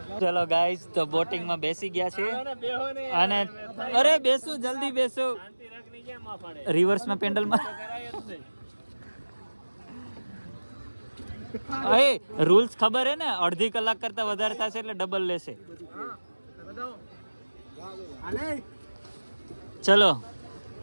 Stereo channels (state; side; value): inverted; both; correlation -1.00